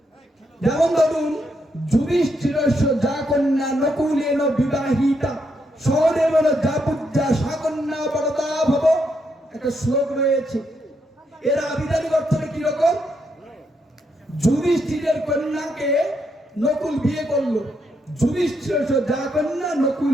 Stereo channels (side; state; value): both; normal; correlation 0.78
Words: যেমন ধরুন, যুধিষ্ঠিরস্য যা কন্যা নকুলেন বিবাহিতা সহদেবেন যা পূজ্যা সা কন্যা বরদা ভব, একটা শ্লোক রয়েছে। এর আবিধানিক অর্থটা কিরকম? যুধিষ্ঠিরের কন্যাকে নকুল বিয়ে করলো, যুধিষ্ঠিরস্য যা কন্যা